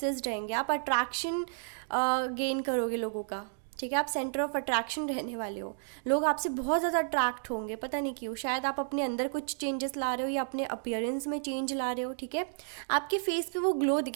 रहेंगे। आप अट्रैक्शन गेन करोगे लोगों का। ठीक है, आप सेंटर ऑफ अट्रैक्शन रहने वाले हो, लोग आपसे बहुत ज़्यादा अट्रैक्ट होंगे, पता नहीं क्यों। शायद आप अपने अंदर कुछ चेंजेस ला रहे हो या अपने अपीयरेंस में चेंज ला रहे हो। ठीक है, आपके फेस पे वो ग्लो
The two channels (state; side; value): silent; left; digital silence